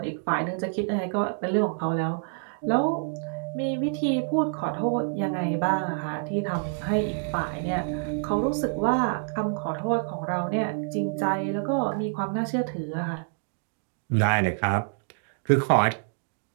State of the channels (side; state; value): left; silent; digital silence